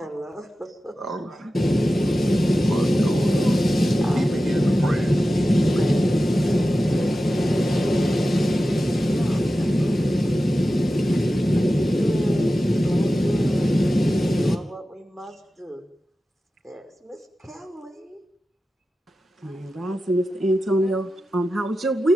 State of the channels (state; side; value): normal; both; correlation 0.94